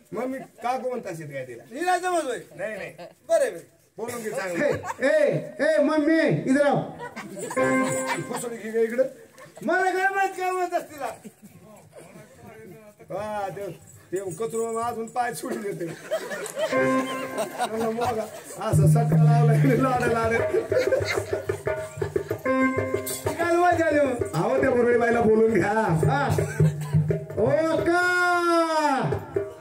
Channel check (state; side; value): identical; both; correlation 1.00